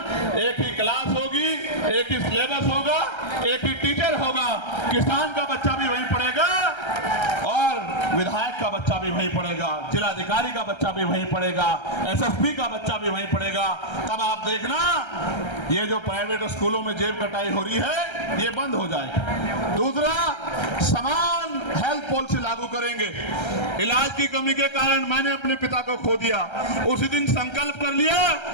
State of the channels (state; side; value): late; right; 1.3 ms